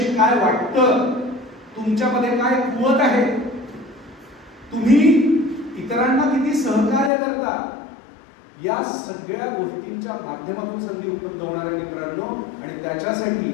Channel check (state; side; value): drops out; right; at 7.1 s